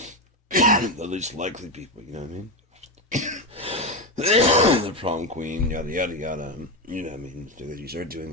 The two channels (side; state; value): both; normal; correlation 0.12